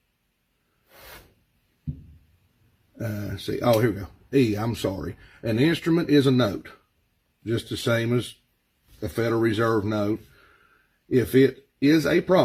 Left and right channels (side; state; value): both; identical; correlation 1.00